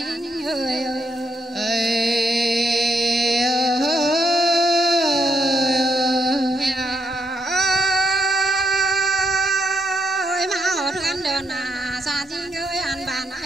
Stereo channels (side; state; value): both; normal; correlation 0.77